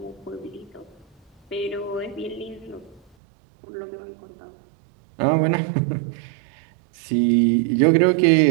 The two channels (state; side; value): drops out; left; at 3.0 s